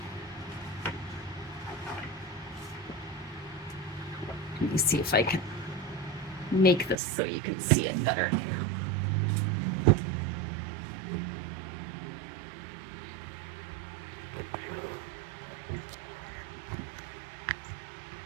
Let me see if I can make this so you can see it better.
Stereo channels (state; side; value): drops out; left; at 7.0 s